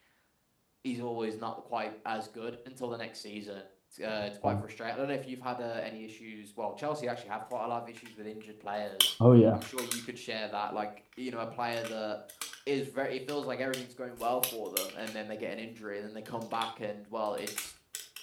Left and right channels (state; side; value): identical; both; correlation 1.00